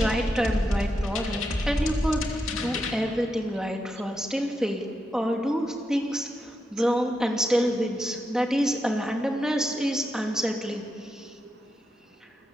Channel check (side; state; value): both; normal; correlation 0.85